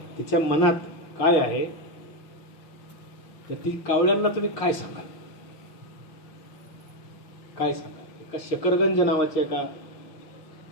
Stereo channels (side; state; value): right; late; 6.5 ms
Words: तिच्या मनात काय आहे? तर ती कावळ्यांना तुम्ही काय सांगाल? काय सांगाल? एका शकरगंज नावाच्या एका